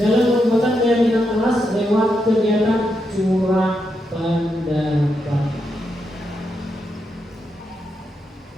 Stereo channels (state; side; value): normal; both; correlation 0.83